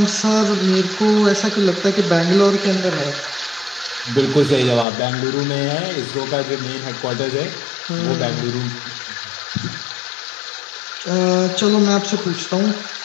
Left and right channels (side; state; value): right; drops out; at 4.9 s